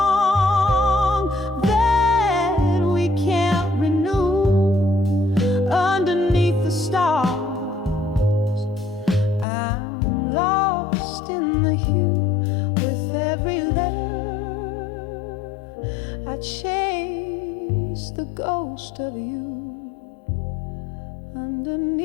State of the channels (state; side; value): drops out; right; at 9.5 s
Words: that we can't renew underneath the stars. I'm lost in the hue with every letter. I chase the ghost of you